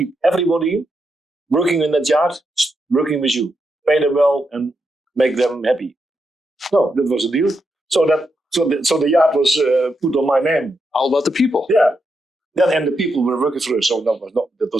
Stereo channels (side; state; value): both; normal; correlation 0.83